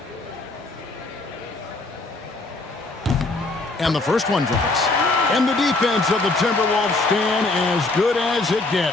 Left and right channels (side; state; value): right; quieter; 3.2 dB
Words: And the first one drops. And the defense of the Timberwolves stand as good as it